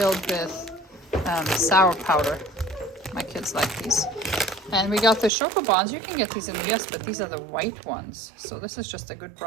with sour powder. My kids like these. And we got the Chocobons. You can get these in the US, but these are the white ones. So this is just a good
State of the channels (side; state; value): left; drops out; at 5.3 s